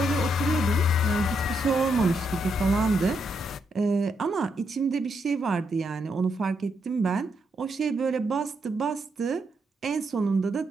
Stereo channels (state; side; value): normal; both; correlation 0.79